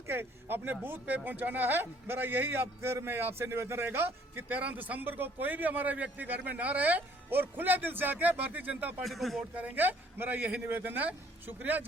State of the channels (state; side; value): normal; both; correlation 0.60